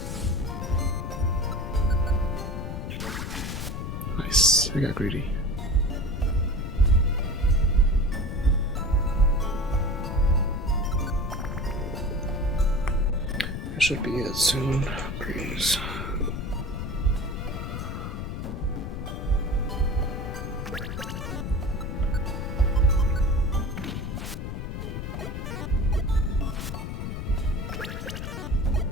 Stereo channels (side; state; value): left; noise; rumble, 5 dB below the sound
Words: Nice, I got greedy. That should be it soon, please.